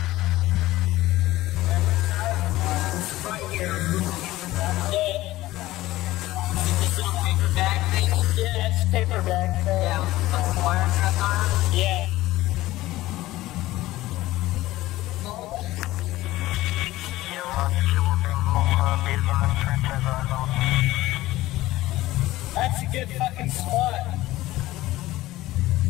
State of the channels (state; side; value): quieter; right; 16.9 dB